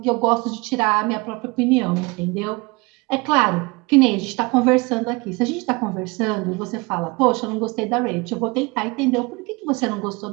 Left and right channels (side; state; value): left; quieter; 26.1 dB